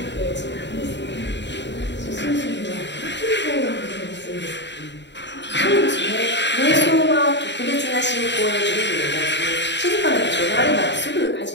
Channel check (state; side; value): late; right; 0.52 ms